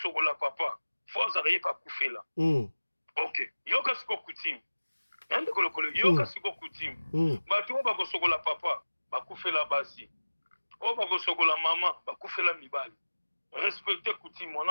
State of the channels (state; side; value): inverted; both; correlation -1.00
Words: papa fo azala ye bakufela ok yoka siko kutime ndeko lokolo yoka siko kutime bato oyo bakosokola papa bakufela basi oyo bakosokola mama bakufela mibali respecter coutume